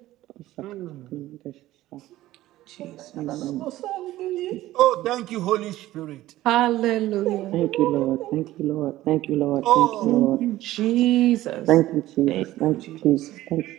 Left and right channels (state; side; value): quieter; left; 15.5 dB